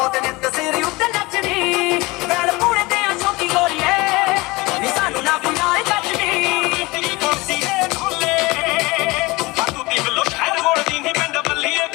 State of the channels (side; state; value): right; quieter; 22.9 dB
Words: ਨੇ ਤਸੇਰੀ ਉੱਤੇ ਨੱਚਦੀ ਗੱਲ ਪੂਰੇ ਤੇ ਆ ਛੋਟੀ ਗੋਲੀਏ ਨੀ ਸਾਨੂੰ ਨਾ ਕੋਈ ਆਏ ਕੱਜਦੀ ਤੇਰੀ ਕੁਰਸੀ ਦੇ ਖੋਲੇ ਬਾਤੂ ਦੀ ਬਲੋ ਸ਼ਹਿਰ ਮੋੜਦੀ ਨਹੀਂ ਪਿੰਡ ਬੱਲੀਏ